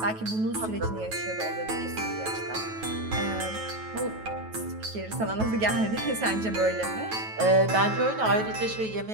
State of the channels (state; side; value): late; left; 9.2 ms